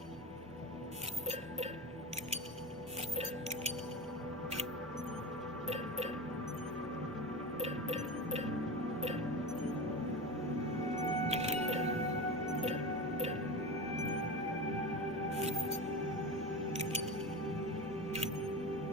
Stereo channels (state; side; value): normal; both; correlation 0.25